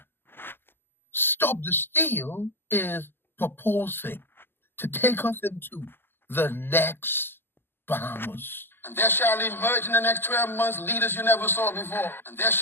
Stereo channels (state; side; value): late; right; 0.10 ms